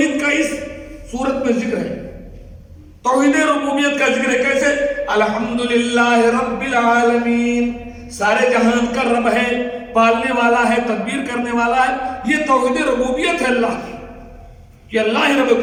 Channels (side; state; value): both; identical; correlation 1.00